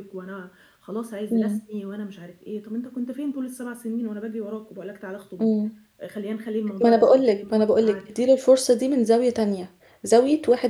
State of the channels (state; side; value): identical; both; correlation 1.00